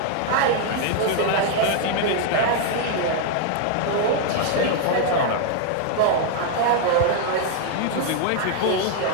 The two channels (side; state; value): both; different; correlation 0.00